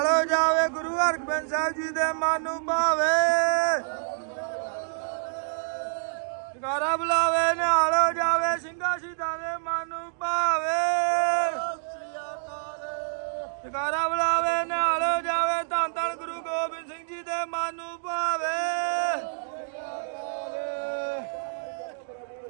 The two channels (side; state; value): left; silent; digital silence